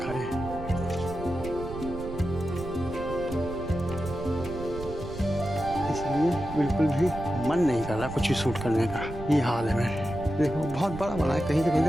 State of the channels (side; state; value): right; noise; rumble, 10 dB below the sound